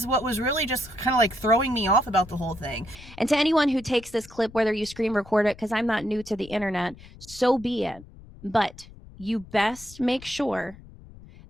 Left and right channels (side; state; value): left; noise; rumble, 19 dB below the sound